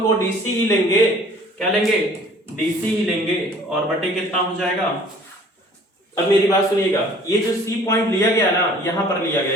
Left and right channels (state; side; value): normal; both; correlation 0.52